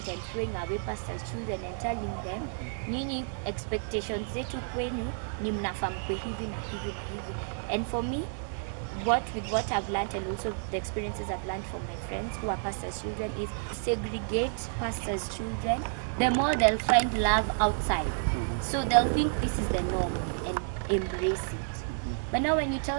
and throwing away pastors' children and telling them, nyinyi expectations zetu kwenu ni mnafaa mkue hivi na hivi na hivi. And for me, with what I've learned and also the experiences I've learned from my friends who are pastors' children is segregate pastors' children. The more they'll find love outside. So they'll think this is the norm and embrace it. But now when you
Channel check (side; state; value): left; silent; digital silence